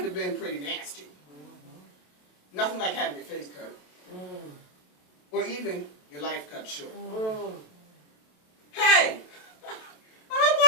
have been pretty nasty. Nothing like having your face cut. Or even your life cut short. Hey! I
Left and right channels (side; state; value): right; late; 27 ms